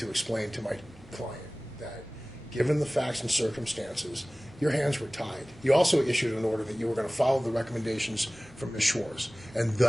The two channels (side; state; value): both; normal; correlation 0.98